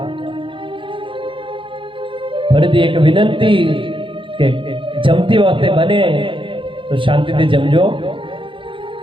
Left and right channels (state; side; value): late; left; 0.25 ms